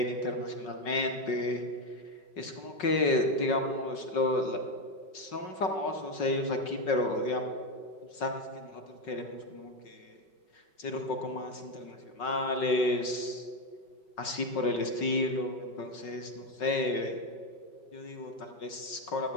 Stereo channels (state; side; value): late; right; 5.4 ms